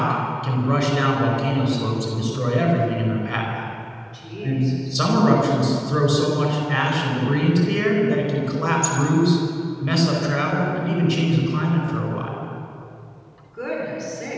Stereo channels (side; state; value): both; identical; correlation 1.00